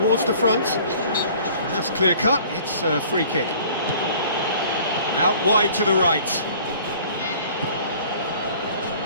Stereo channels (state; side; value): inverted; both; correlation -0.51